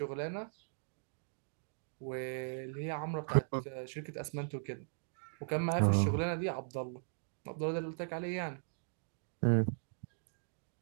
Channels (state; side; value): silent; left; digital silence